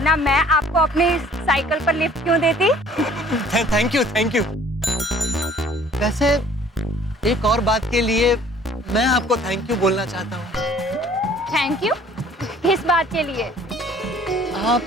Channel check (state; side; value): normal; both; correlation 0.54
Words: मैं आपको अपनी साइकिल पर लिफ्ट क्यों देती? Thank you. वैसे एक और बात के लिए मैं आपको थैंक यू बोलना चाहता हूँ। Thank you? किस बात के लिए?